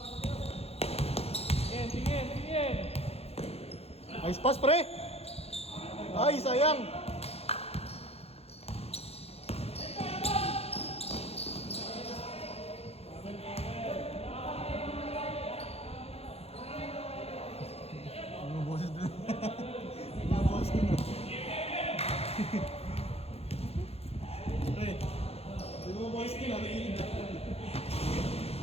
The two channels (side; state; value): right; late; 0.29 ms